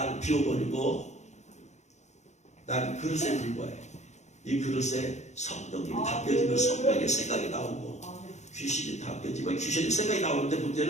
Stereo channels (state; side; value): late; right; 0.33 ms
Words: 비워버리고 나는 그릇에 불과해. 이 그릇에 성령님이 담겨지면 성령의 생각이 나오고 귀신이 담겨지면 귀신의 생각이 나오는데